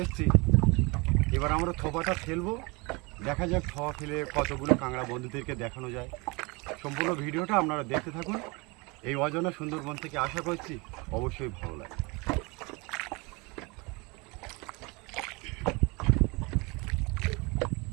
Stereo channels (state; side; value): quieter; left; 27.3 dB